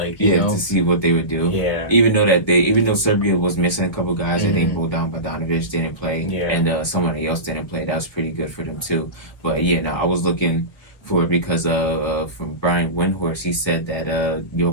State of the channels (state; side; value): late; right; 1.1 ms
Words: to see what they would do. Yeah. Even though Serbia was missing a couple guys, I think Bojan Bogdanovic didn't play. Yeah. And somebody else didn't play. That was pretty good for them, too. But, yeah, no, I was looking for it because from Brian Windhorst, he said that